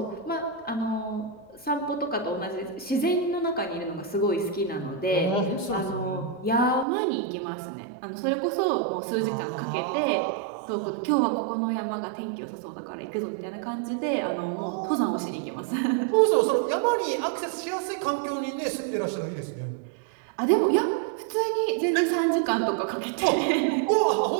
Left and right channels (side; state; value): left; drops out; at 6.9 s